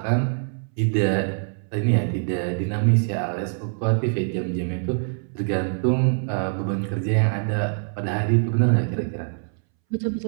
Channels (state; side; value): silent; left; 63 dB below the other